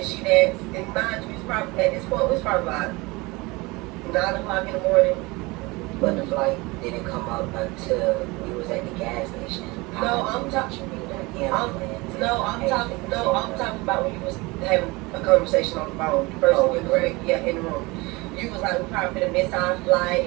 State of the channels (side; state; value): left; quieter; 23.7 dB